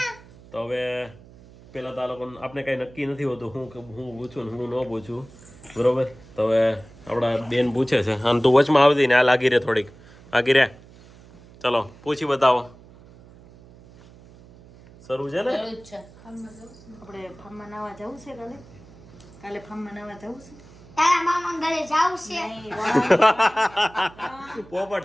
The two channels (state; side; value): noise; right; hum, 22 dB below the sound